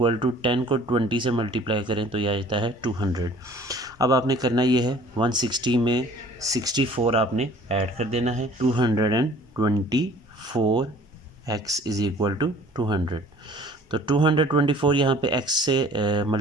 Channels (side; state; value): both; normal; correlation 0.51